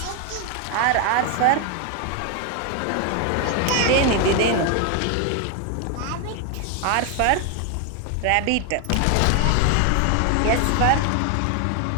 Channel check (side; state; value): both; different; correlation 0.01